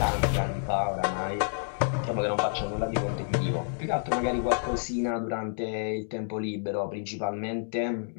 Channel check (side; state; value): right; silent; digital silence